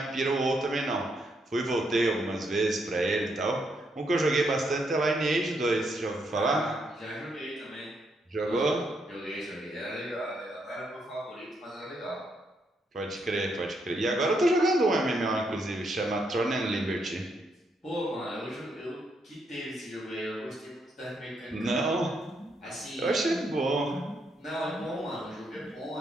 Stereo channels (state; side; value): normal; both; correlation 0.77